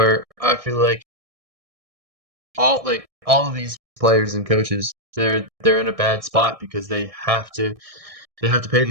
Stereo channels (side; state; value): left; late; 1.6 ms